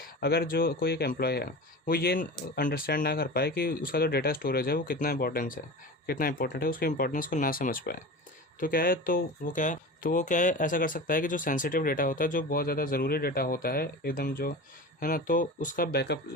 अगर जो कोई एक एम्प्लॉय है वो ये अंडरस्टैंड ना कर पाए कि उसका जो डेटा स्टोरेज है वो कितना इंपॉर्टेंट है, उसके इंपॉर्टेंस को ना समझ पाए, तो क्या है, तो वो क्या है ऐसा कर सकता है कि जो सेंसिटिव डेटा होता है, जो बहुत ज़्यादा ज़रूरी डेटा होता है एकदम, जो है ना, तो उसका बैकअप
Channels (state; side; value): normal; both; correlation 0.32